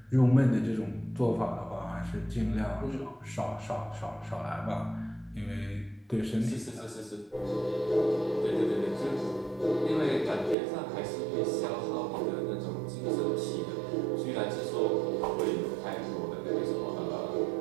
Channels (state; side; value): drops out; left; at 10.6 s